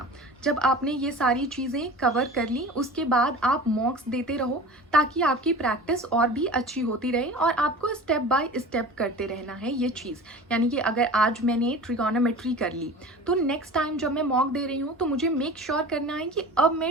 जब आपने ये सारी चीज़ें कवर कर ली, उसके बाद आप मॉक्स देते रहो ताकि आपकी प्रैक्टिस और भी अच्छी होती रहे, और आपको स्टेप बाय स्टेप करते रहना है ये चीज़। यानी कि अगर आज मैंने ट्रिगोनोमेट्री कर ली, तो नेक्स्ट टाइम जब मैं मॉक दे रही हूँ तो मुझे मेक श्योर करना है कि अब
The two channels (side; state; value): both; normal; correlation 0.37